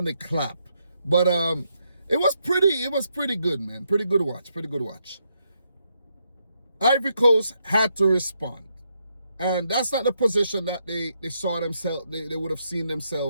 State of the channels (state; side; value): inverted; both; correlation -0.79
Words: clap, but it was pretty good, man. Pretty good watch. Ivory Coast had to respond. And that's not the position that they saw themselves, they would have seen